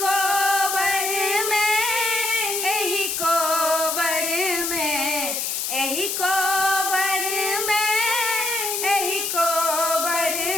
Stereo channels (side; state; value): left; noise; hiss, 1 dB below the sound